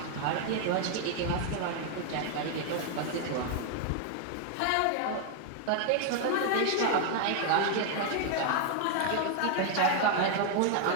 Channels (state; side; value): different; both; correlation 0.00